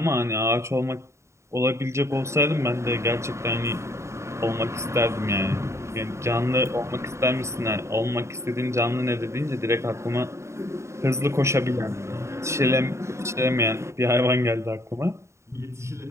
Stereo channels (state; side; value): late; left; 0.14 ms